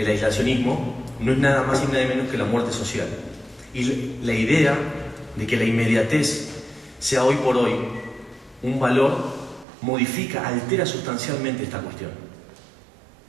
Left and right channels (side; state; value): left; drops out; at 9.7 s